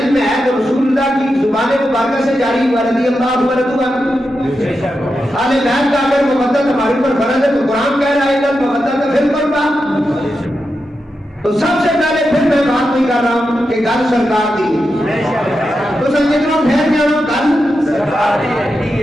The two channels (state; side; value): normal; both; correlation 0.88